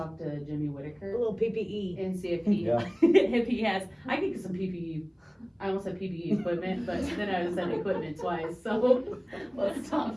to Jimmy A Whitaker little PPE. and see if he, Yeah. if he has, I could get some PPE, I almost said PPE equipment, but then I said equipment twice, so let's stop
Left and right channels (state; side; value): identical; both; correlation 1.00